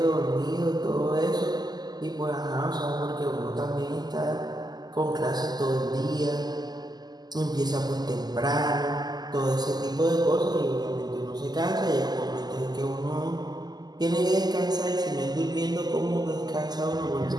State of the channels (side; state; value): left; late; 0.20 ms